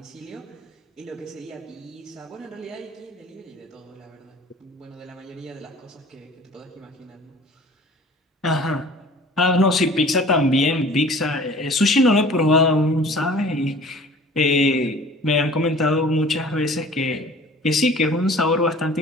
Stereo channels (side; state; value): both; normal; correlation 0.46